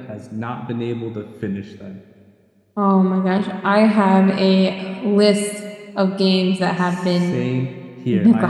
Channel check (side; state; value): both; identical; correlation 1.00